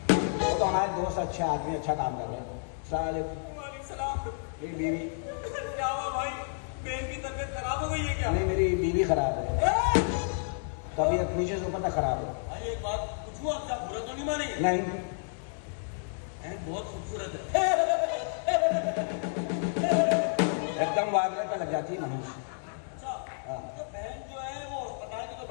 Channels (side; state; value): right; silent; digital silence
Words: वो तो हमारे दोस्त अच्छे आदमी, अच्छा काम कर रहे हैं। साले वालेकुम सलाम। मेरी बीवी क्या हुआ भाई? बहन की तबीयत खराब हो गई है क्या? नहीं, मेरी बीवी खराब है। तबीयत नीचे से ऊपर तक खराब है। भाई एक बात पूछूं आपसे, आप बुरा तो नहीं मानेंगे? नहीं, बहन बहुत खूबसूरत है। एकदम वागले पे लग जाती है मनुष्य। अच्छा, हाँ। तो बहन जो है वो अस्पताल में तो